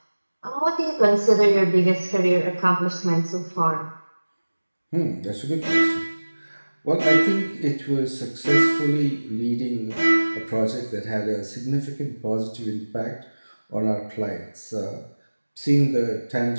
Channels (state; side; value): inverted; both; correlation -1.00